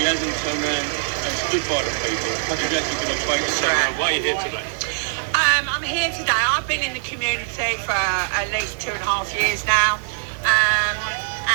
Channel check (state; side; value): silent; left; 61 dB below the other